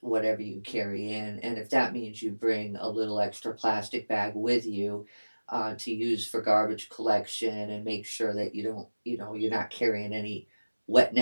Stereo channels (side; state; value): both; inverted; correlation -1.00